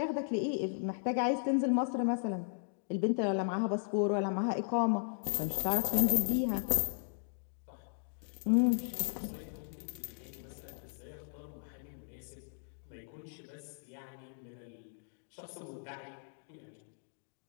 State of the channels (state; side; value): silent; right; digital silence